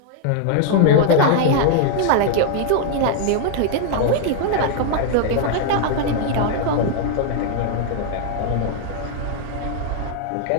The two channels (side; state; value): both; different; correlation 0.00